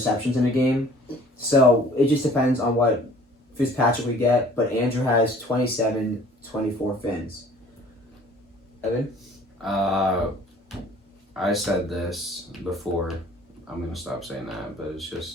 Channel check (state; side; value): normal; both; correlation 0.52